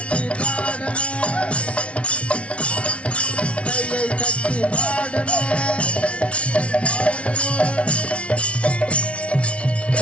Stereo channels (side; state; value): right; late; 0.061 ms